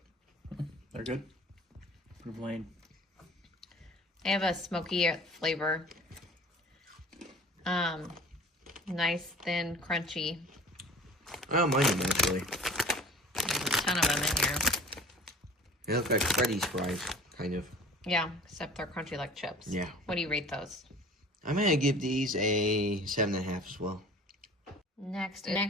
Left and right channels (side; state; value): both; normal; correlation 0.44